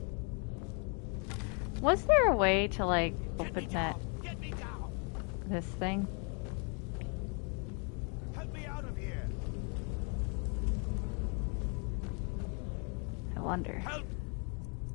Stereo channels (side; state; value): right; quieter; 37.3 dB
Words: Was there a way to, like, open that... this thing? Help me out of here! I wonder. Help!